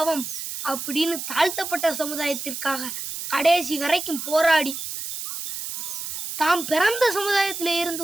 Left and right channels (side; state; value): right; noise; hiss, 6 dB below the sound